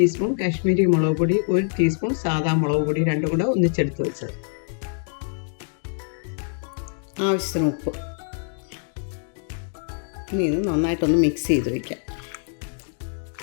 കാശ്മീരി മുളക് പൊടി, 1 ടീസ്പൂൺ സാദാ മുളക് പൊടി, രണ്ടും കൂടെ ഒന്നിച്ചെടുത്ത് വെച്ചത്, ആവശ്യത്തിന് ഉപ്പ്. ഇനി ഇത് നന്നായിട്ടൊന്ന് മിക്സ് ചെയ്ത് വയ്ക്കാം.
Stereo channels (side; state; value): right; silent; 62 dB below the other